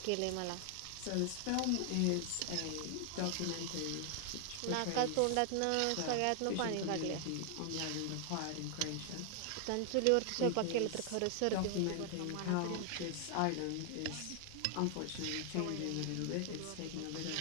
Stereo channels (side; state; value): both; different; correlation 0.00